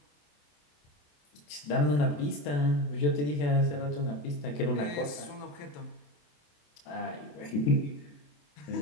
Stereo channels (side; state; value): right; late; 27 ms